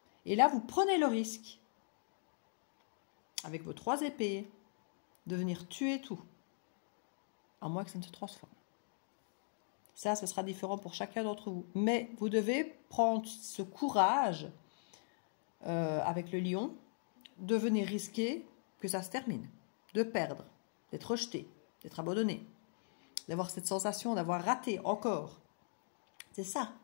Et là, vous prenez le risque, avec vos 3 épées, de venir tuer tout, à moins que ça ne se transforme. Ça, ce sera différent pour chacun d'entre vous. Mais vous devez prendre ce courage, avec le lion, de venir risquer que ça se termine, de perdre, d'être rejeté, d'être abandonné, d'avoir cette sensation d'avoir raté encore. C'est ça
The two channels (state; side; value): silent; right; digital silence